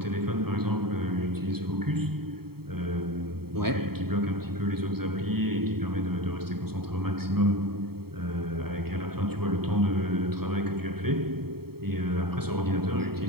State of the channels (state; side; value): late; left; 0.95 ms